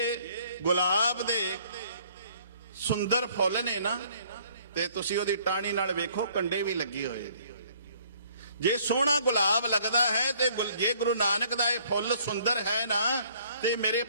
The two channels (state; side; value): inverted; both; correlation -0.60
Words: ਗੁਲਾਬ ਦੇ ਸੁੰਦਰ ਫੁੱਲ ਨੇ ਨਾ, ਤੇ ਤੁਸੀਂ ਉਹਦੀ ਟਾਹਣੀ ਨਾਲ ਵੇਖੋ, ਕੰਡੇ ਵੀ ਲੱਗੇ ਹੋਏ। ਜੇ ਸੋਹਣਾ ਗੁਲਾਬ ਲੱਗਦਾ ਹੈ, ਤੇ ਜੇ ਗੁਰੂ ਨਾਨਕ ਦਾ ਇਹ ਫੁੱਲ ਸੁੰਦਰ ਹੈ ਨਾ, ਤੇ ਮੇਰੇ